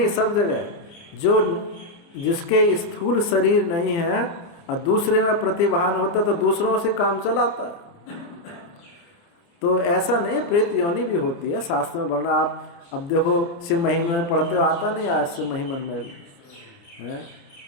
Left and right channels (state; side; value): late; right; 29 ms